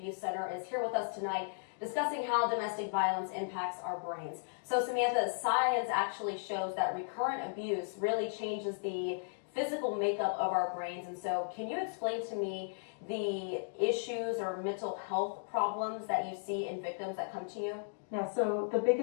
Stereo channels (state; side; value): silent; right; digital silence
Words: Center is here with us tonight discussing how domestic violence impacts our brains. So Samantha, science actually shows that recurrent abuse really changes the physical makeup of our brains. And so can you explain to me the issues or mental health problems that you see in victims that come to you? Yeah, so the